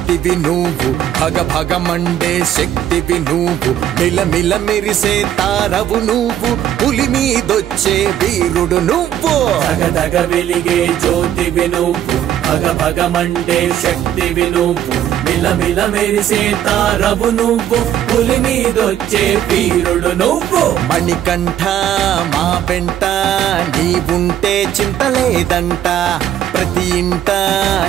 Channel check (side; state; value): left; quieter; 10.9 dB